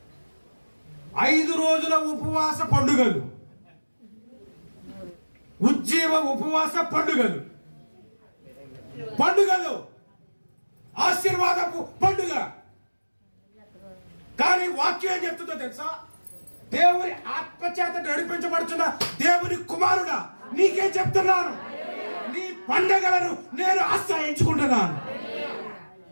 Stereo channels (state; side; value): inverted; both; correlation -1.00